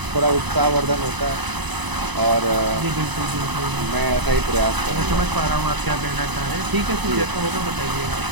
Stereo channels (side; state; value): left; late; 1.0 ms